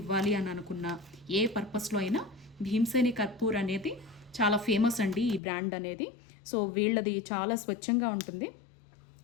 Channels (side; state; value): right; drops out; at 5.4 s